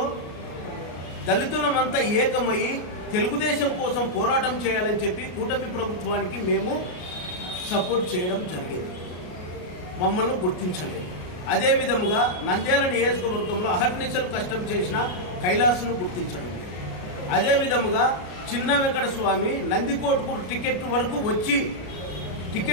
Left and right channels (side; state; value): right; late; 33 ms